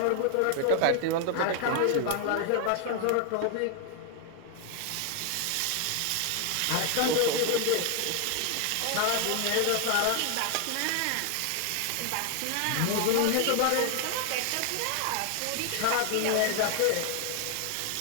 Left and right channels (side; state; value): both; different; correlation 0.00